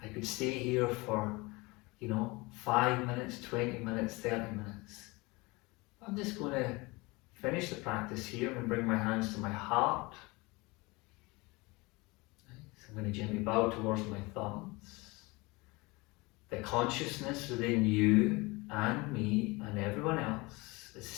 I could stay here for, 5 minutes, 20 minutes, 30 minutes. I'm just going to finish the practice here and bring my hands to my heart. So I'm going to gently bow towards my thumbs. the consciousness within you and me and everyone else is the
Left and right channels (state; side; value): quieter; right; 24.3 dB